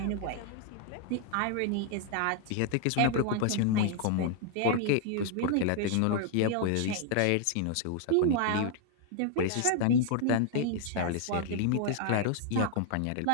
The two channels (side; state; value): both; different; correlation 0.00